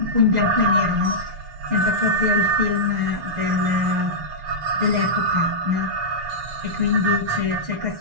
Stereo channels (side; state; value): left; late; 6.7 ms